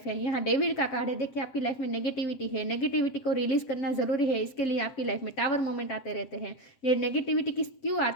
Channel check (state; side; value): late; right; 7.7 ms